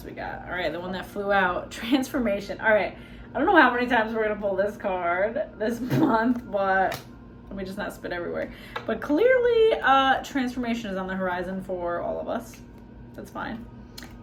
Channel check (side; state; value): both; identical; correlation 1.00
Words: we got. All right, the one that flew out, transformation. All right, I don't know how many times we're gonna pull this card this month, but let me just not spit everywhere. But clearly, transformation is on the horizon for all of us. That's fine.